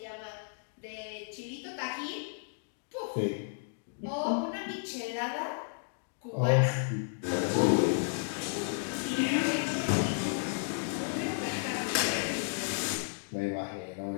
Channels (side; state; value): right; silent; digital silence